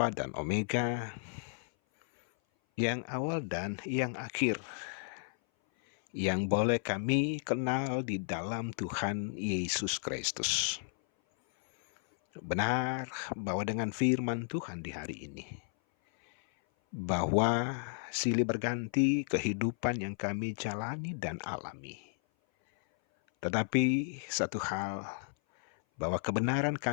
dan Omega, yang awal dan yang akhir, yang boleh kami kenal di dalam Tuhan Yesus Kristus. Benar bahwa dengan firman Tuhan di hari ini, bahwa silih berganti kehidupan yang kami jalani dan alami. Tetapi satu hal, bahwa kebenaran,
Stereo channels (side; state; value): right; silent; 55 dB below the other